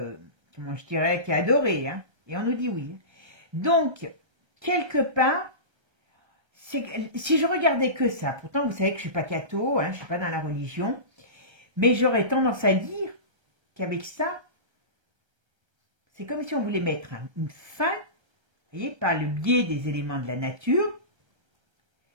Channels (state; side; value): late; left; 1.3 ms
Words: comment je dirais, qui est adoré. Hein, et on nous dit oui. Donc, quelque part, si je regardais que ça, pourtant vous savez que je ne suis pas catho, hein, je ne suis pas dans la religion, mais j'aurais tendance à dire qu'avec ça, c'est comme si on voulait mettre une fin, vous voyez, par le biais des éléments de la nature,